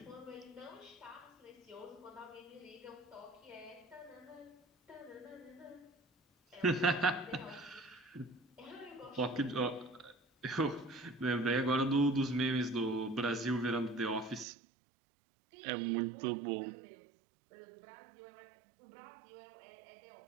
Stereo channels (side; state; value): left; drops out; at 14.5 s